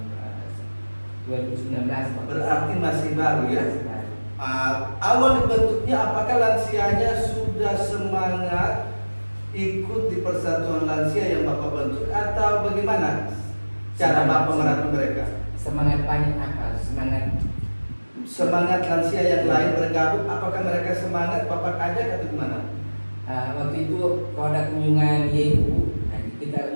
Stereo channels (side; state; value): both; inverted; correlation -1.00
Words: 2019. Berarti masih baru ya. Masih baru. Awal dibentuknya apakah lansianya sudah semangat ikut di persatuan lansia yang Bapak bentuk atau bagaimana cara Bapak merangkul mereka? Semangat banyak apa? Semangat lansia yang lain bergabung, apakah mereka semangat Bapak ajak atau gimana? Waktu itu kalau ada kunjungan YU, kita